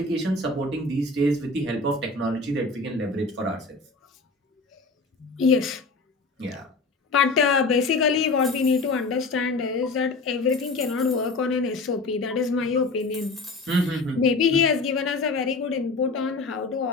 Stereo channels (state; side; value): quieter; right; 3.6 dB